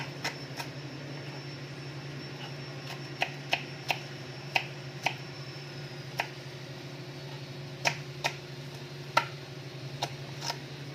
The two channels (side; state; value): both; identical; correlation 1.00